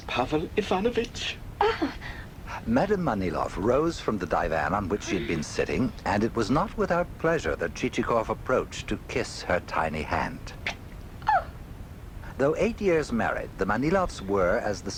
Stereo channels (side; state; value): both; identical; correlation 1.00